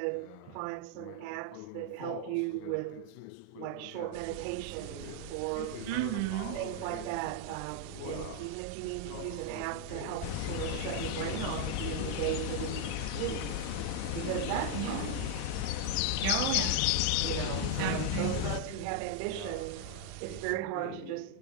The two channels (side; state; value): both; different; correlation 0.01